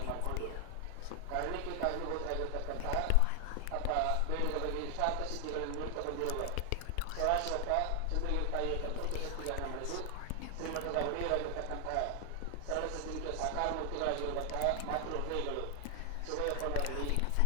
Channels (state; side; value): different; both; correlation 0.00